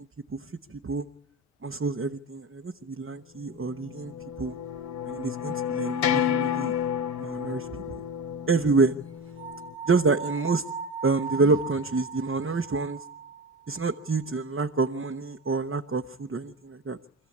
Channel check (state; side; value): normal; both; correlation 0.25